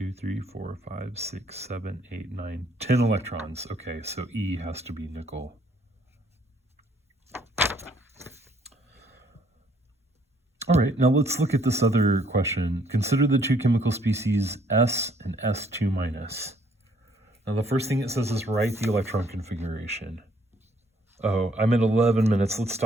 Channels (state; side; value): normal; both; correlation 0.65